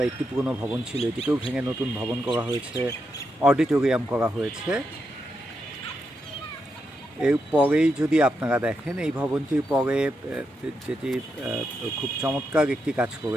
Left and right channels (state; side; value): normal; both; correlation 0.84